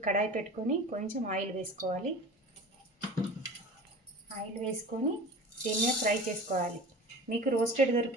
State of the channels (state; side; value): normal; both; correlation 0.37